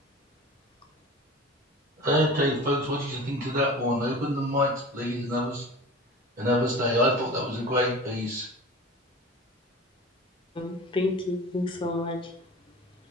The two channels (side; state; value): both; normal; correlation 0.36